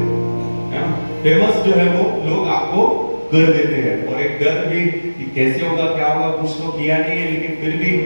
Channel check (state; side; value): inverted; both; correlation -1.00